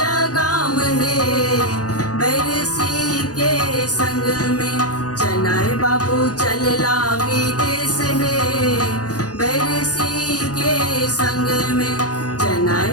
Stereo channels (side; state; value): right; late; 0.68 ms